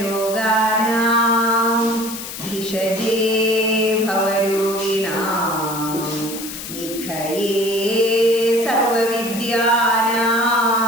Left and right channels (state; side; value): noise; left; hiss, 9 dB below the sound